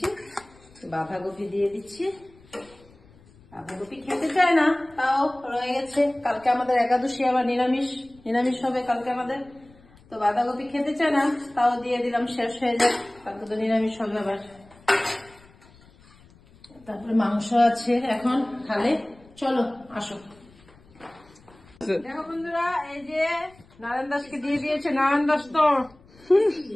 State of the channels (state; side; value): noise; left; rumble, 26 dB below the sound